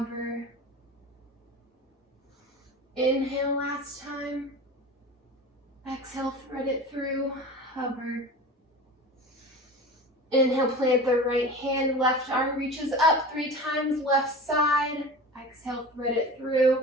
Inhale, last time. Exhale, thread it through, hover. Inhale, plant the right hand, left arm reaches up 3 times, left side. Exhale, thread it through,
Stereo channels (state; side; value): normal; both; correlation 0.34